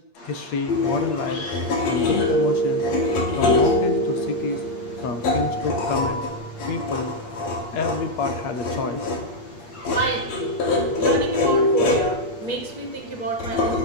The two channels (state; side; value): late; right; 8.5 ms